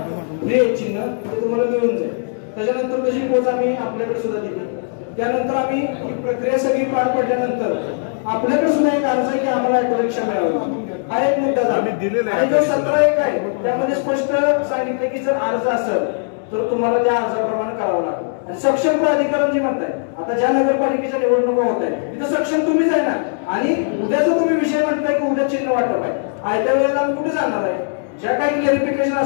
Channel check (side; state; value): right; silent; digital silence